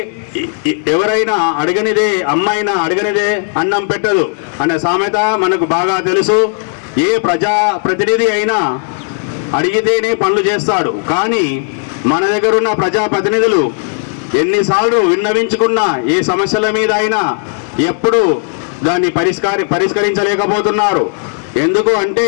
ఎవరైనా అడగనిదే అమ్మైనా అడగనిదే అన్నం పెట్టదు అనే సామెత మనకు బాగా తెలుసు. ఏ ప్రజాప్రతినిధి అయినా అడిగితేనే పనులు చేస్తాడు. కానీ మన దగ్గర ఉన్న ప్రజాప్రతినిధులు ఎన్నిసార్లు విన్నవించుకున్నా ఏ సమస్యల మీద అయినా ఎప్పుడు దాన్ని పరిష్కరించలేకపోతున్నారు. ఎందుకు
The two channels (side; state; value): right; silent; 58 dB below the other